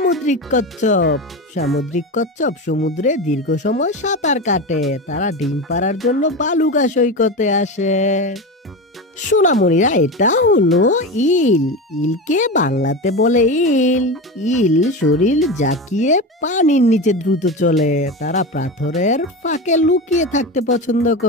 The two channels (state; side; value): normal; both; correlation 0.22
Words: কচ্ছপ। সামুদ্রিক কচ্ছপ সমুদ্রে দীর্ঘ সময় সাঁতার কাটে। তারা ডিম পাড়ার জন্য বালুকা সৈকতে আসে। সোনামণিরা, এটা হলো ইল। ইলকে বাংলাতে বলে ইল। ইল শরীর জাকিয়ে পানির নিচে দ্রুত চলে। তারা পাথরের ফাঁকে লুকিয়ে থাকতে পছন্দ